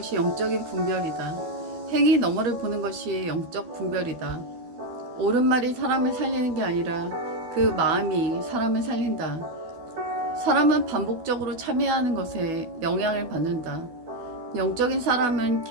영적인 분별이다. 행위 너머를 보는 것이 영적 분별이다. 옳은 말이 사람을 살리는 게 아니라 그 마음이 사람을 살린다. 사람은 반복적으로 참여하는 것에 영향을 받는다. 영적인 사람은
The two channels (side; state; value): left; late; 12 ms